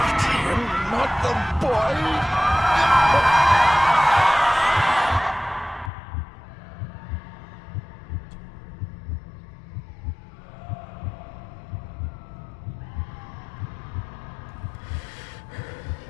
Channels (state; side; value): drops out; right; at 5.9 s